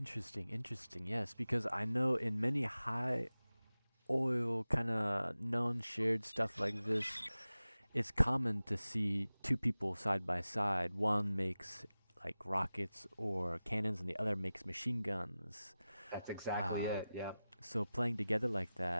interesting. Yes, because I know in many high oil kind of known shared stuff like this, it's common to see two people side by side. One makes like rockets or cannons, and the other makes machine guns. That's exactly Uh, it. Yeah. so playing together like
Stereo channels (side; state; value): both; inverted; correlation -0.96